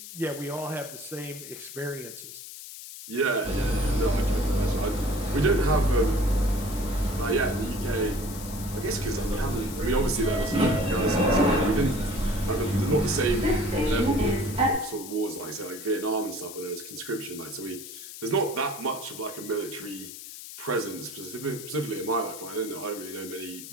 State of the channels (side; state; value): left; noise; hiss, 12 dB below the sound